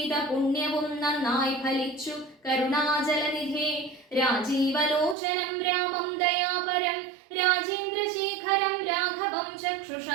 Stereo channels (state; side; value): drops out; left; at 5.2 s